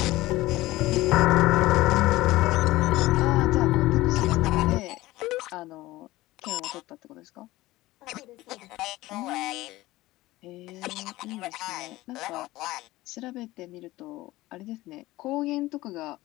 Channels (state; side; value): quieter; right; 18.1 dB